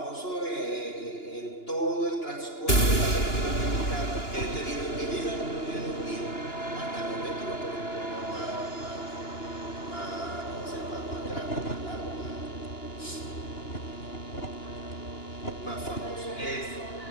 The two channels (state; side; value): late; right; 2.9 ms